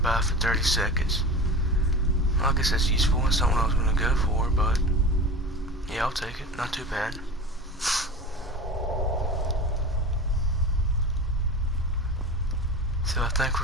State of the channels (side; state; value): both; normal; correlation 0.32